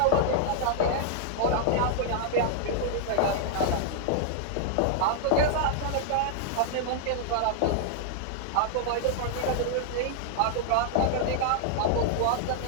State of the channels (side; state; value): both; different; correlation -0.01